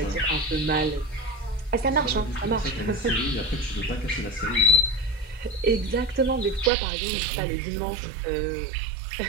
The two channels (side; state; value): left; drops out; at 6.7 s